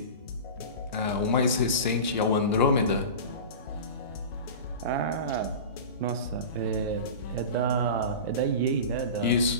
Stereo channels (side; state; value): both; inverted; correlation -0.31